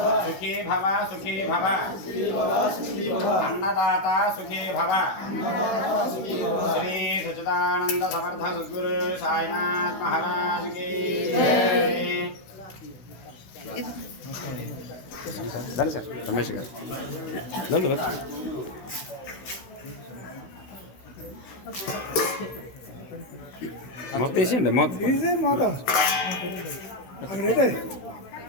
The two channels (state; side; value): late; right; 16 ms